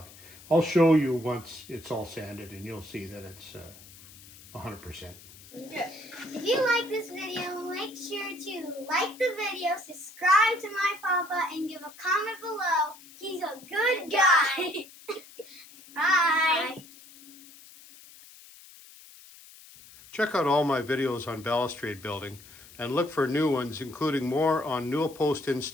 I'll show you once it's all sanded and you'll see that it's 100%. If you like this video, make sure to like the video, subscribe to my papa, and give a comment below. He's a good guy. Bye. Check out all my videos on balustrade building and look for new ones, including more on Newel post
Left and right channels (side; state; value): left; noise; hiss, 20 dB below the sound